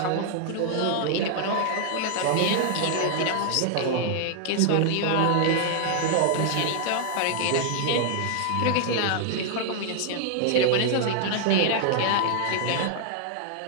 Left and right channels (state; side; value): different; both; correlation 0.00